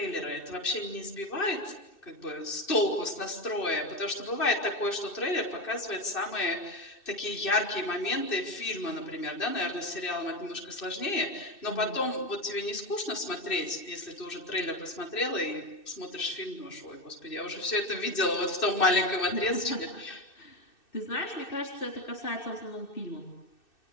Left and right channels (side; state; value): right; late; 2.6 ms